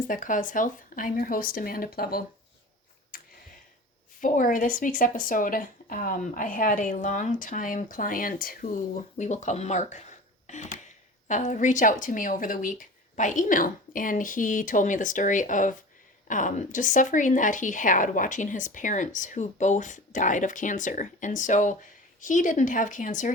That Cause Health. I'm your host, Amanda Plevel. For this week's episode, I had a longtime client who we will call Mark reach out to me over the week by email. And he told me the story of just suffering that he had watching his parents who both died of cancer. And so he didn't have cancer.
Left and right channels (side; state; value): both; normal; correlation 0.36